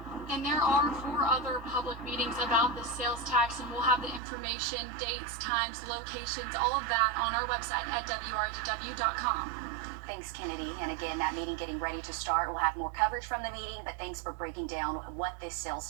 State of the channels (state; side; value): drops out; left; at 4.2 s